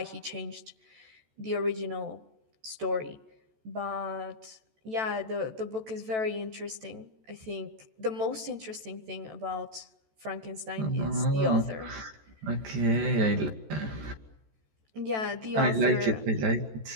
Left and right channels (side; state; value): left; late; 14 ms